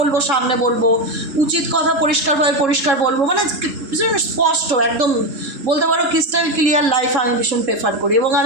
সামনে বলবো, উচিত কথা পরিষ্কারভাবে পরিষ্কার বলবো, মানে ভীষণ স্পষ্ট একদম, বলতে পারো ক্রিস্টাল ক্লিয়ার লাইফ আমি ভীষণ প্রেফার করি। এবং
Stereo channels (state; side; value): late; left; 3.7 ms